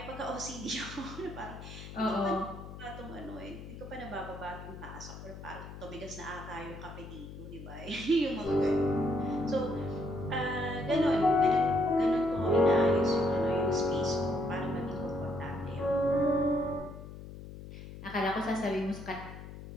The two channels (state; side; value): noise; left; hum, 13 dB below the sound